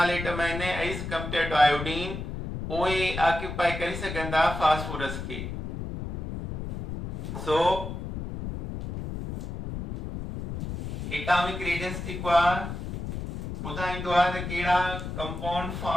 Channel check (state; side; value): noise; left; rumble, 6 dB below the sound